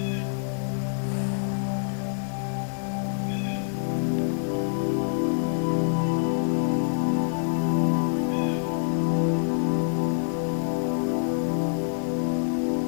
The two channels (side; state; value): right; silent; 61 dB below the other